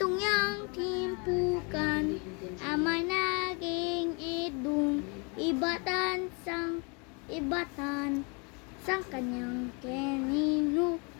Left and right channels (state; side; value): quieter; right; 33.2 dB